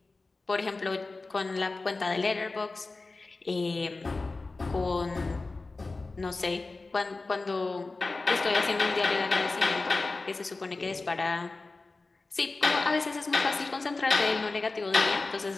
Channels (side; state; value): right; quieter; 3.6 dB